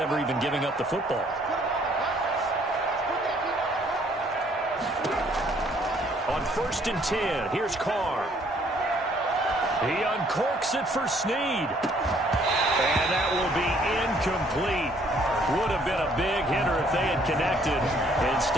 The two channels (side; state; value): both; normal; correlation 0.63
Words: even giving up the football. On 1st and 10, here's Carr. He uncorks it for Snead. And that will be incomplete. Would have been a big hitter if they had connected.